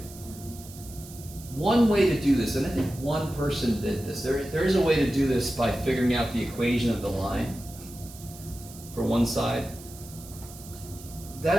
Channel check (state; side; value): noise; right; hiss, 17 dB below the sound